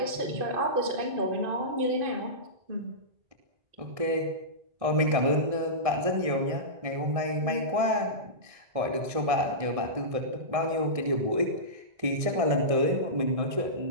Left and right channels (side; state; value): left; late; 1.6 ms